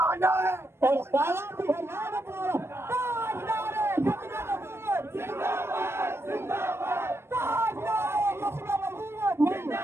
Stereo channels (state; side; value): late; left; 0.12 ms